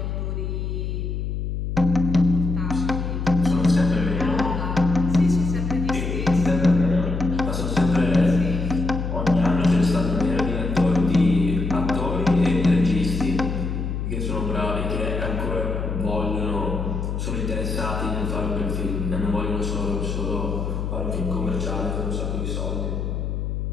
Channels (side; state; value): left; noise; hum, 3 dB below the sound